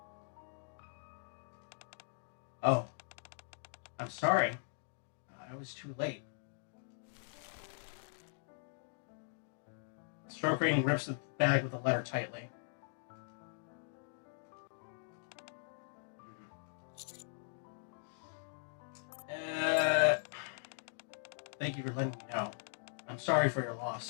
Oh. I'm sorry. I was too late. Stroking grips the bag with the letter tightly. Thank you for letting me know. I'm sorry for your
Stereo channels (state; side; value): silent; right; digital silence